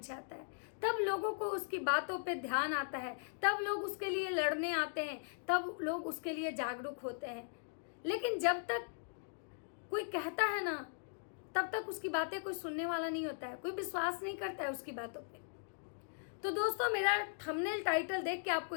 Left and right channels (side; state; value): right; silent; digital silence